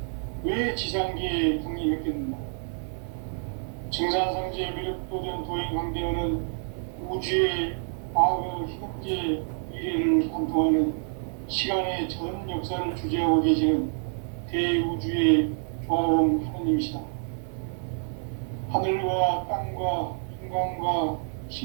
왜 지상계에 강림했겠는가? 증산상제 미륵도전 도인 강대윤은 우주의 과거, 현재, 미래를 관통하는 시간의 전 역사를 주재하고 계시는 대우주의 조화원 하느님이시다. 하늘과 땅과 인간과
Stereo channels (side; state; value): left; silent; 60 dB below the other